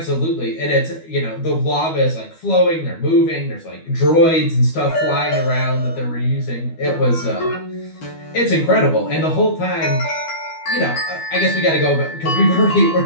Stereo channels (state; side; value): late; right; 12 ms